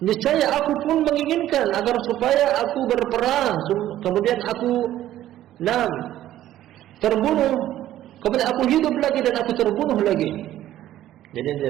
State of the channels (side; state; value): left; quieter; 13.1 dB